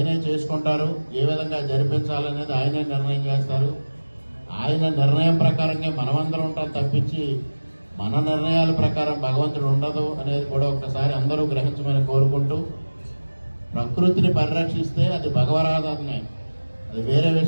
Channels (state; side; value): inverted; both; correlation -1.00